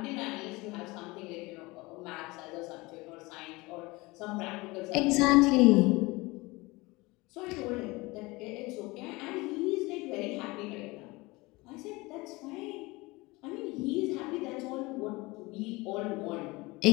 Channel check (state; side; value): quieter; right; 22.9 dB